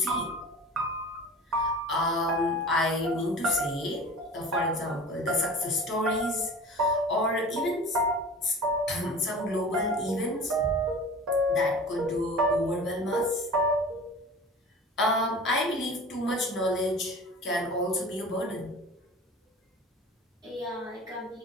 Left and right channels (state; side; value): normal; both; correlation 0.39